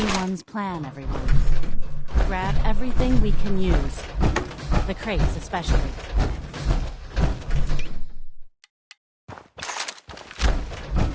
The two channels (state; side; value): identical; both; correlation 1.00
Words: plan, everyone. Grab everything we can use. The crates, especially.